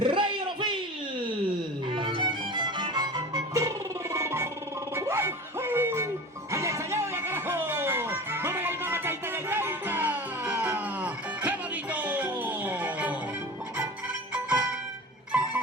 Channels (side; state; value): both; normal; correlation 0.35